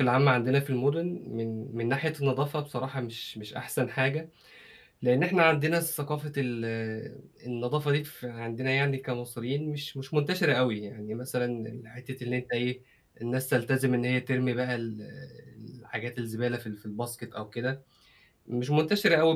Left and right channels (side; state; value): both; identical; correlation 1.00